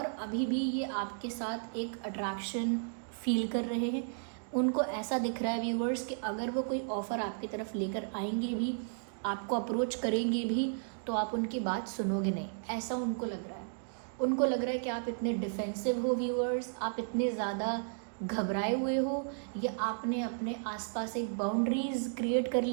अभी भी ये आपके साथ एक अट्रैक्शन फील कर रहे हैं। उनको ऐसा दिख रहा है व्यूअर्स कि अगर वो कोई ऑफ़र आपकी तरफ लेकर आएंगे भी आपको अप्रोच करेंगे भी तो आप उनकी बात सुनोगे नहीं, ऐसा उनको लग रहा है। उनको लग रहा है कि आप इतने डिफेंसिव हो व्यूअर्स, आप इतने ज़्यादा घबराए हुए हो, या आपने अपने आसपास एक बाउंड्रीज़ क्रिएट कर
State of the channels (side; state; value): left; silent; digital silence